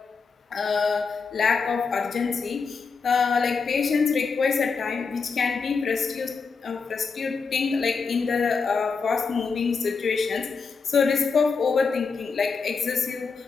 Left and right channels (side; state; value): right; quieter; 5.1 dB